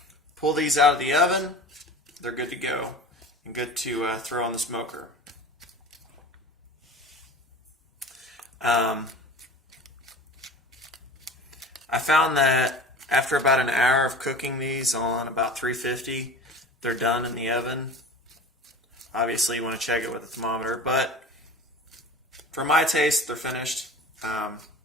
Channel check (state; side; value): normal; both; correlation 0.37